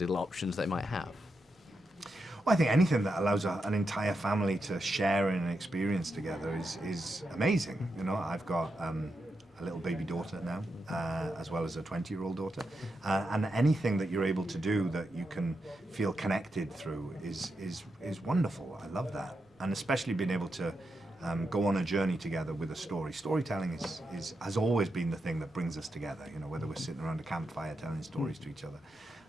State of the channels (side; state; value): both; normal; correlation 0.86